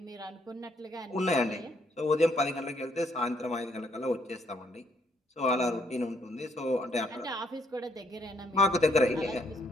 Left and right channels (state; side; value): normal; both; correlation 0.70